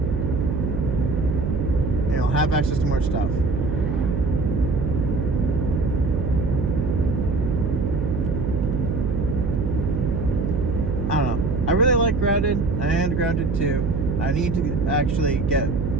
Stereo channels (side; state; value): right; noise; hum, 2 dB below the sound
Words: And you'll have access to more stuff. I don't know. I really like Grounded and Grounded 2. I need to actually get